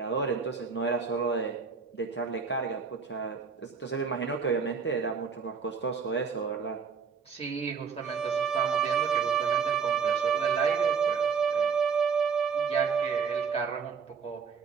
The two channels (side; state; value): left; quieter; 5.8 dB